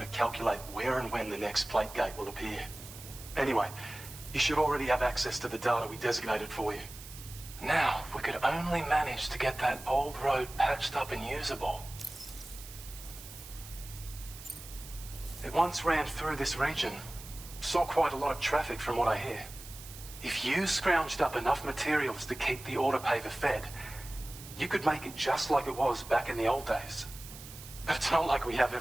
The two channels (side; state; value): right; noise; hiss, 15 dB below the sound